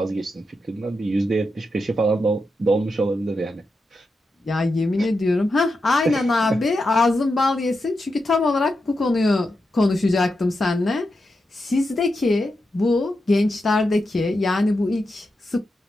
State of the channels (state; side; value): normal; both; correlation 0.88